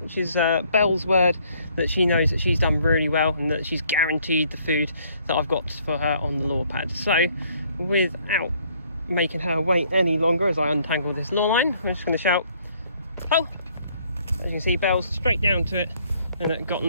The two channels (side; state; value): both; inverted; correlation -0.64